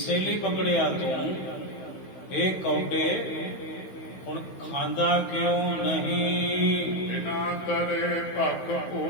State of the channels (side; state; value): right; late; 16 ms